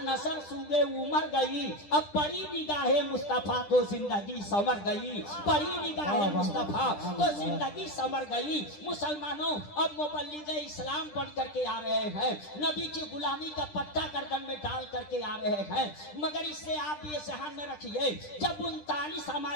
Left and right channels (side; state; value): right; late; 10 ms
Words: नसर सूगे उमर गई। अब बड़ी निगाहे मुस्तफा तो जिंदगी संवर गई, बड़ी निगाहे मुस्तफा तो जिंदगी संवर गई। मुसलमानों अब मुबल्लिग इस्लाम बन करके आ रहे हैं, नबी की गुलामी का पट्टा गर्दन में डाल करके आ रहे हैं। मगर इससे आप ये ध्यान में रखिए, जब 39